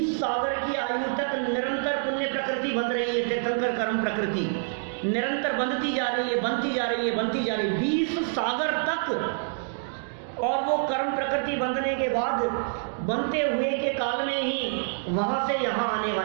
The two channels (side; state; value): left; silent; digital silence